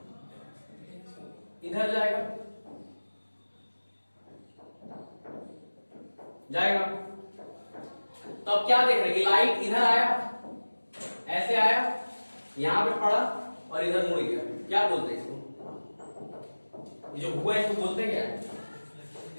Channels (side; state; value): both; inverted; correlation -1.00